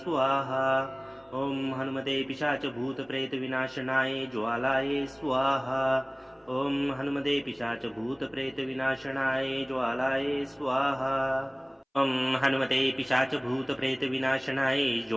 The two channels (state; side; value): identical; both; correlation 1.00